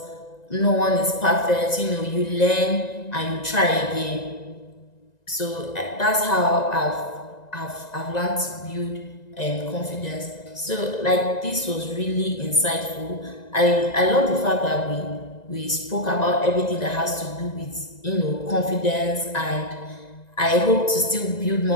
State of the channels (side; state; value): right; late; 1.9 ms